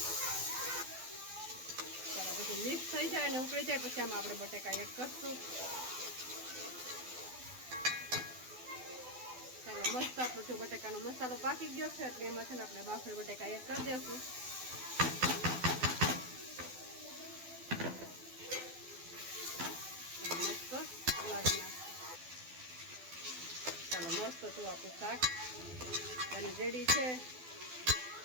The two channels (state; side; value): late; left; 12 ms